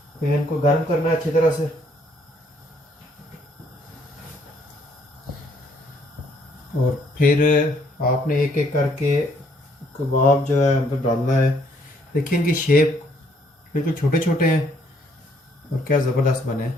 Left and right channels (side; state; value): both; normal; correlation 0.66